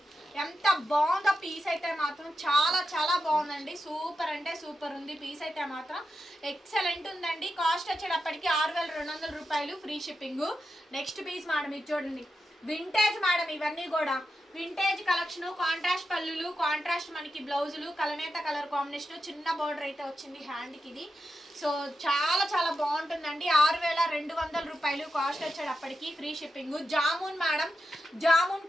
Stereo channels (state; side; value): normal; both; correlation 0.88